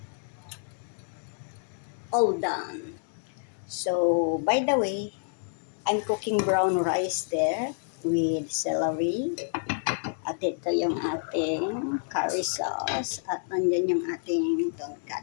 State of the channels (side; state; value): right; silent; 59 dB below the other